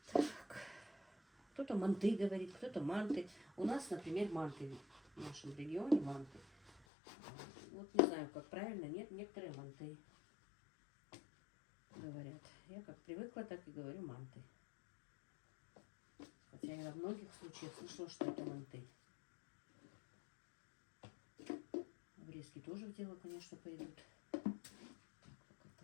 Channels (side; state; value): right; drops out; at 6.9 s